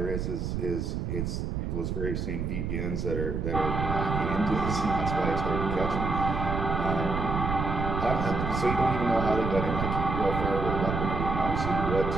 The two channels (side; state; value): right; noise; rumble, 2 dB below the sound